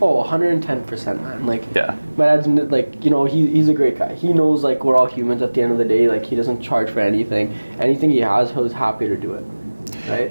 Oh, 110%, man. Like, yeah. My dad's like, you know, he's a great guy. He knows like we're all humans at the end of the day. Like, he doesn't charge for anything. Anything he has, he's happy to do it,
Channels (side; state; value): both; inverted; correlation -1.00